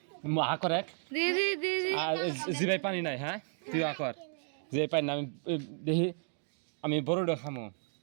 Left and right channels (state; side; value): silent; left; 56 dB below the other